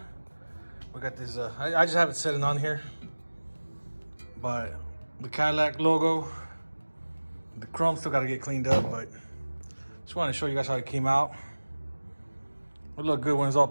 We got this, I just have it sitting on here. But the Cadillac logo, the chrome still got to get cleaned up, but just wanted to show you guys how it came out. It look good when it's all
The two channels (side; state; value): both; inverted; correlation -1.00